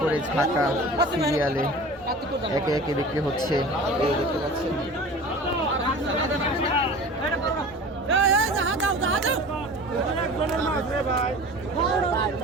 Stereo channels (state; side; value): noise; left; hum, 25 dB below the sound